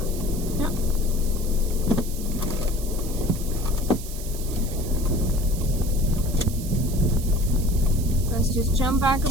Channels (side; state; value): right; noise; hiss, 12 dB below the sound